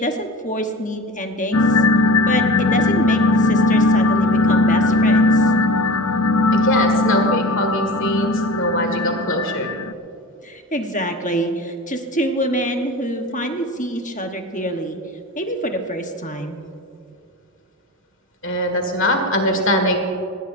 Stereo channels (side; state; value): both; normal; correlation 0.33